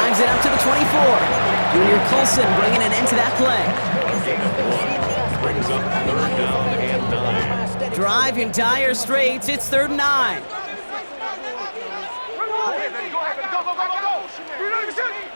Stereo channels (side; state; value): both; inverted; correlation -1.00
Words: it up to the 24. Junior Colson bringing an end to that play. Brings up 3rd down and 9. Drive in dire straits. It's 3rd and 9.